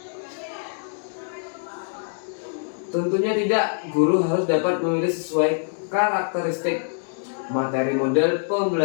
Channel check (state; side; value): silent; right; 62 dB below the other